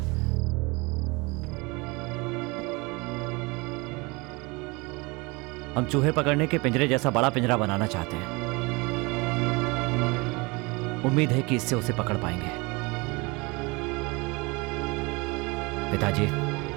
हम चूहे पकड़ने के पिंजरे जैसा बड़ा पिंजरा बनाना चाहते हैं। उम्मीद है कि इससे उसे पकड़ पाएंगे। पिताजी,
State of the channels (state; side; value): quieter; left; 26.2 dB